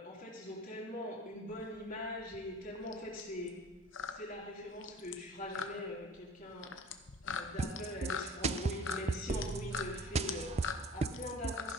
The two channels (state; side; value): normal; both; correlation 0.44